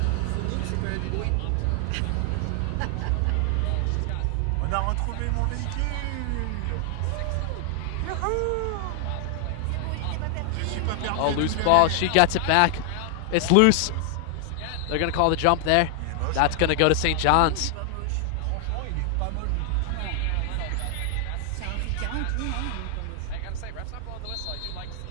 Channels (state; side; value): different; both; correlation 0.00